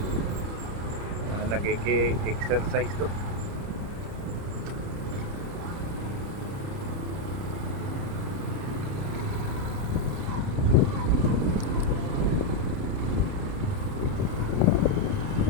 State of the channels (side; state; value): left; late; 30 ms